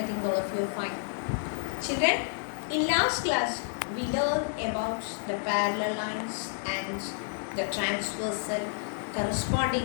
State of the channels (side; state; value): right; silent; digital silence